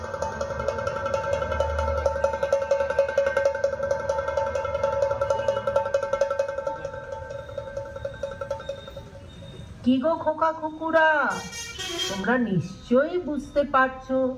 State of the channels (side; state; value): both; identical; correlation 1.00